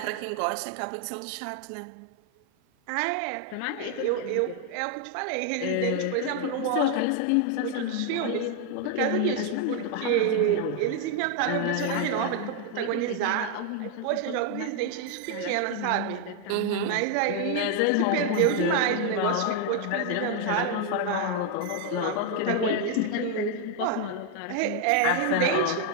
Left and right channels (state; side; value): different; both; correlation 0.00